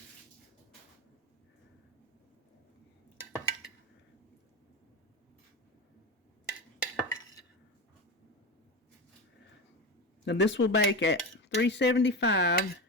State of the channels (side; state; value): both; normal; correlation 0.22